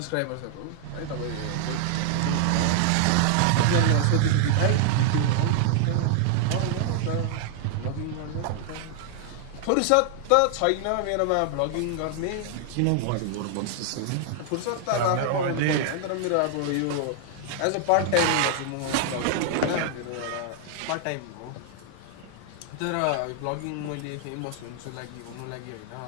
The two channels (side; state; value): both; different; correlation 0.00